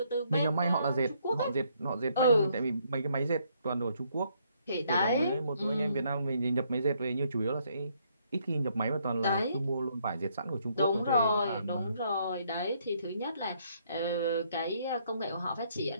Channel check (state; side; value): inverted; both; correlation -0.70